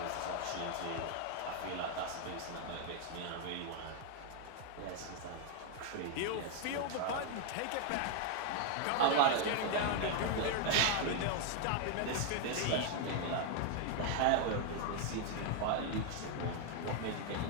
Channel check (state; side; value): different; both; correlation 0.01